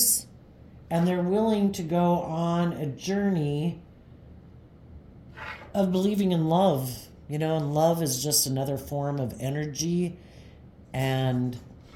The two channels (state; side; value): identical; both; correlation 1.00